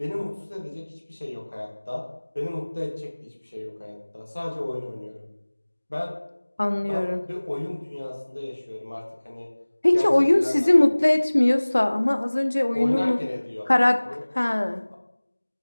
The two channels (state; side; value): inverted; both; correlation -1.00